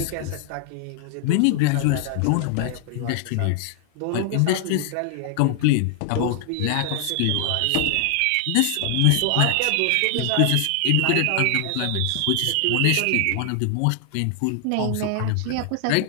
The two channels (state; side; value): different; both; correlation 0.00